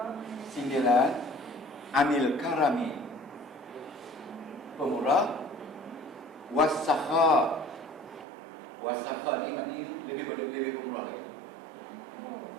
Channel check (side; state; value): left; drops out; at 8.2 s